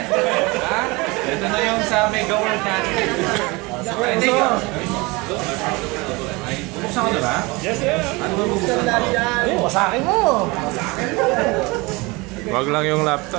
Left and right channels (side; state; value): left; quieter; 24.8 dB